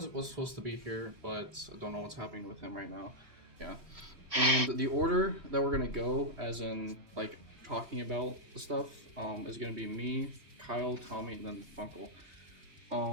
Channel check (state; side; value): late; left; 3.0 ms